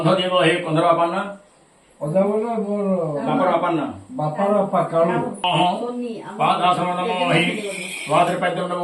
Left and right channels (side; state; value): both; identical; correlation 1.00